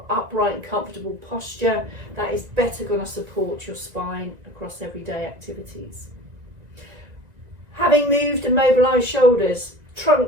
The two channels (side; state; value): left; late; 1.9 ms